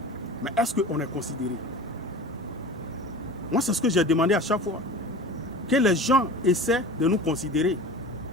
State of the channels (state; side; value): normal; both; correlation 0.36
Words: Mais est-ce qu'on est considéré? Moi, c'est ce que j'ai demandé à chaque fois. Que les gens essaient de nous considérer.